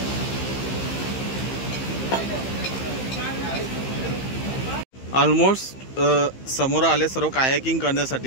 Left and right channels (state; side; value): late; right; 15 ms